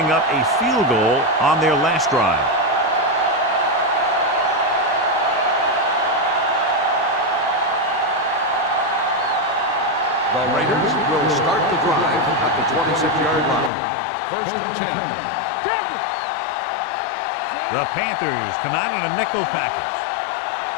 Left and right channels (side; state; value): right; drops out; at 13.7 s